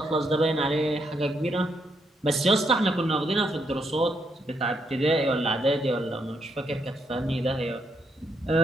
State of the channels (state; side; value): normal; both; correlation 0.76